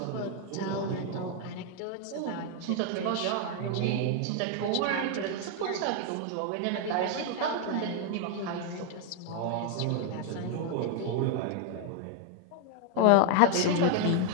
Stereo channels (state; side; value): different; both; correlation 0.00